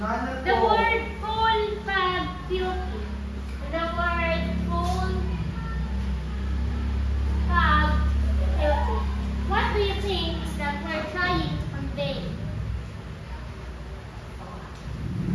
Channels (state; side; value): identical; both; correlation 1.00